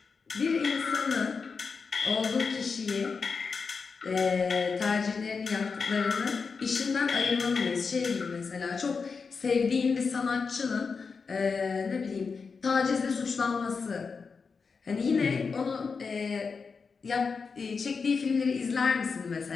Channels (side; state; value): right; quieter; 5.1 dB